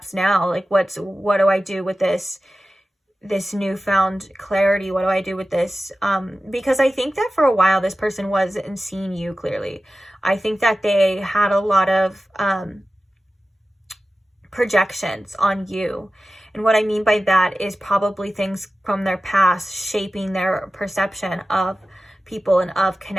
now? Like, what do I do with this newfound clarity? What do I do with this? Because I think that for a while, this person wasn't seeing you clearly. I think that they had a lot of projections on you. And what I mean by that is probably things from their past shaping their perception of people and of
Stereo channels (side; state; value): both; normal; correlation 0.94